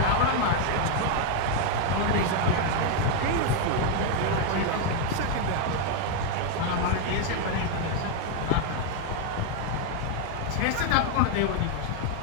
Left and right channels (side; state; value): both; different; correlation 0.01